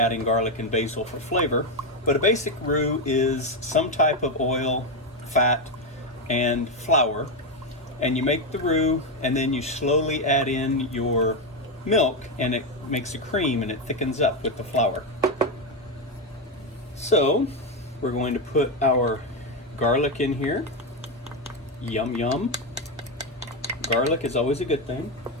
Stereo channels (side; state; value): both; normal; correlation 0.08